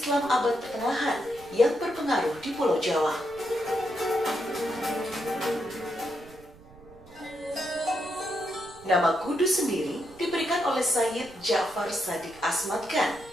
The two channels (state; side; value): noise; right; rumble, 23 dB below the sound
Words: abad pertengahan yang berpengaruh di Pulau Jawa. Nama Kudus sendiri diberikan oleh Sayyid Ja'far Shadiq Asmad